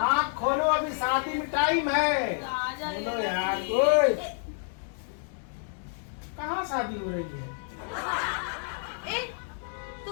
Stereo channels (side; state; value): right; silent; 58 dB below the other